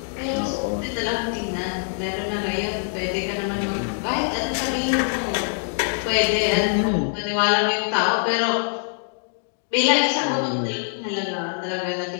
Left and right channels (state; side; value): silent; right; digital silence